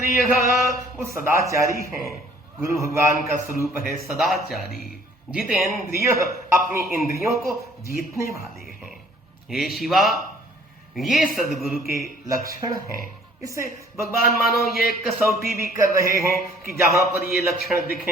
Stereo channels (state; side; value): normal; both; correlation 0.57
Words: वो सदाचारी हैं। गुरु भगवान का स्वरूप है सदाचारी। जितेंद्रिय, अपनी इंद्रियों को जीतने वाले हैं। हे शिवा, ये सदगुरु के लक्षण हैं। इससे भगवान मानो ये कसौटी भी कर रहे हैं कि जहां पर ये लक्षण